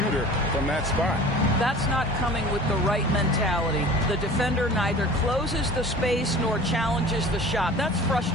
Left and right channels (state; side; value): normal; both; correlation 0.41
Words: from that spot. That's not coming with the right mentality. The defender neither closes the space nor challenges the shot. That's